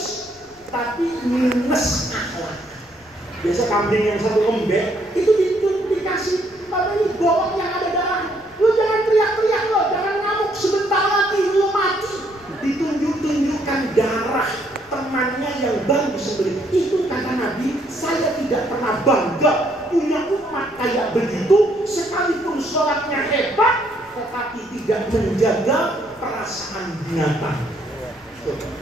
tapi minus akhlak. Biasa kambing yang satu lembek itu dikasih apa ini bawang yang ada darah. Lu jangan teriak-teriak lo, jangan ngamuk, sebentar lagi lu mati. Ditunjuk-tunjukkan darah temannya yang baru disembelih. Itu kata Nabi, saya tidak pernah bangga punya umat kayak begitu, sekalipun sholatnya hebat, tetapi tidak menjaga perasaan binatang.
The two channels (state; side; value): noise; left; rumble, 29 dB below the sound